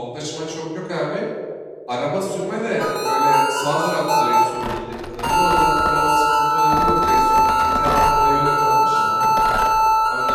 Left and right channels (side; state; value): both; identical; correlation 1.00